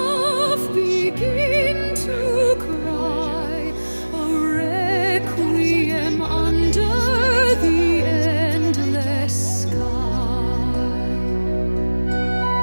begin to cry a requiem under the endless sky.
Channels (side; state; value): both; inverted; correlation -1.00